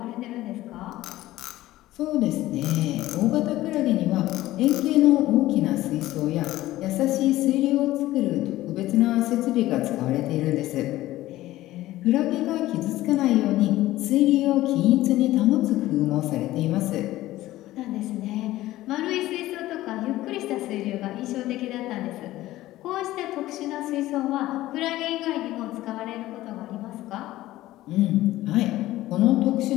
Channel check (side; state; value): right; quieter; 16.0 dB